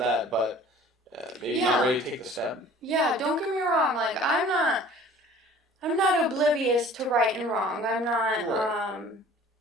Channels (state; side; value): normal; both; correlation 0.48